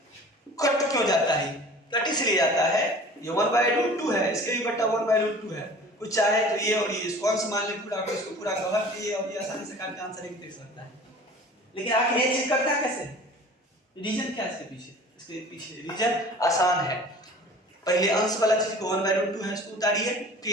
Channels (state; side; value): normal; both; correlation 0.44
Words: कट क्यों जाता है, कट इसलिए जाता है, ये 1/√2 है, इसके भी बट्टा 1/√2 है, कुछ चाहे तो ये और ये इसको अंश मान ले पूरा, इसको पूरा कवर किए और ये आसानी से काट के आंसर लिख सकता है। लेकिन आखिर ये चीज करता कैसे, रीजन क्या है इसके पीछे रीजन आसान है। पहले अंश वाला चीज को 1/√2 है इसको उतारिए,